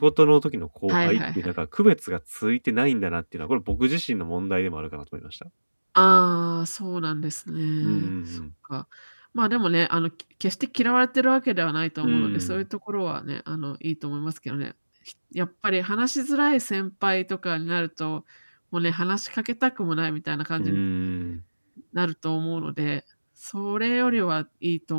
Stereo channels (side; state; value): both; inverted; correlation -1.00